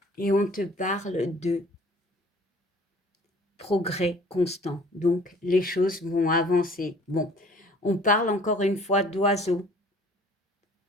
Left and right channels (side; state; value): both; normal; correlation 0.52